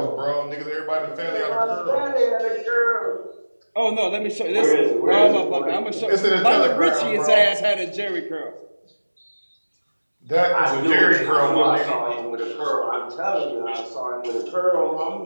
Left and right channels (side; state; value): both; inverted; correlation -1.00